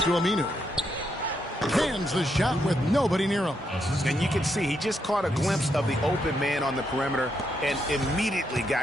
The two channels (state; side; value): normal; both; correlation 0.79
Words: to Aminu. Hands the shot with nobody near him. And you can see he just caught a glimpse of the open man on the perimeter and immediately